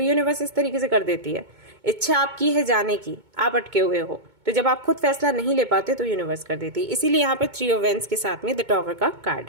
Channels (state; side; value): late; left; 2.2 ms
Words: यूनिवर्स इस तरीके से कर देती है, इच्छा आपकी है जाने की, आप अटके हुए हो, तो जब आप खुद फैसला नहीं ले पाते तो यूनिवर्स कर देती है। इसीलिए यहाँ पर 3 ऑफ वेंस के साथ में द टॉवर का कार्ड